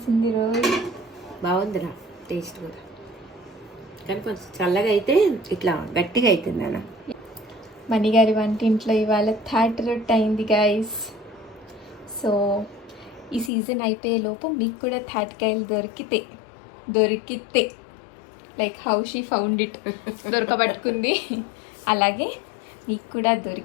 రోయ్. బాగుందిరా టేస్ట్ కూడా, కానీ కొంచెం చల్లగా అయితే ఇట్లా గట్టిగా అవుతుంది అన్న. మణిగారి వంటింట్లో ఇవాళ థర్డ్ రొట్టె అయింది గైస్. సో ఈ సీజన్ అయిపోయే లోపు మీకు కూడా తాటికాయలు దొరికితే like how she found it, దొరకబట్టుకుంది. అలాగే మీకు కూడా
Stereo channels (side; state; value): right; drops out; at 13.5 s